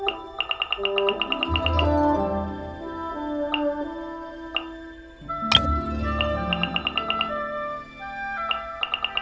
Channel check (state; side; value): identical; both; correlation 1.00